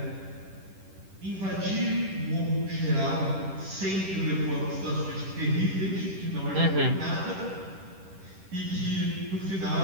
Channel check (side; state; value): left; late; 10 ms